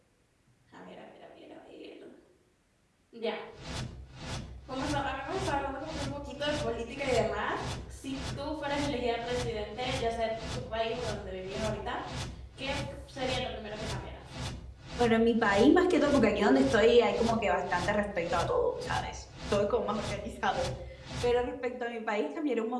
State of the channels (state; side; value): identical; both; correlation 1.00